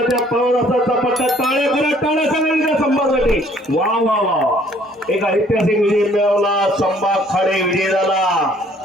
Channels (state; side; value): normal; both; correlation 0.60